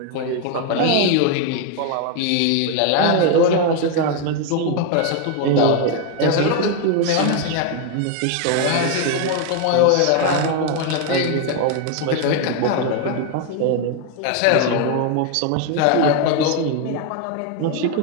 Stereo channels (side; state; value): both; different; correlation 0.01